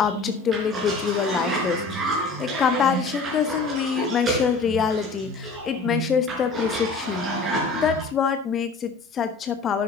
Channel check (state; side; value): quieter; right; 4.1 dB